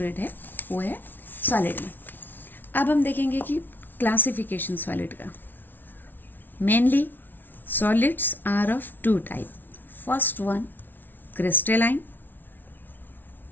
रेट है वो है सॉलिड में। अब हम देखेंगे कि क्लासिफिकेशन सॉलिड का। Mainly solids are of two type. First one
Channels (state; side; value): late; right; 0.090 ms